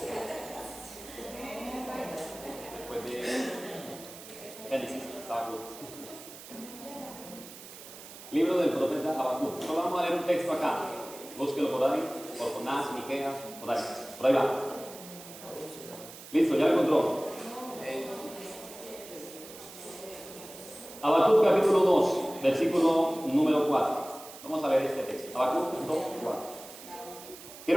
Después de Génesis, Habacuc. Libro del profeta Habacuc. Solo vamos a leer un texto acá. Búsquelo por ahí, por Jonás, Miqueas, por ahí va. Listo, ya lo encontró. Habacuc capítulo 2, versículo número 4. Vamos a leer este texto. Habacuc 2, 4.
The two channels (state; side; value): noise; right; hiss, 15 dB below the sound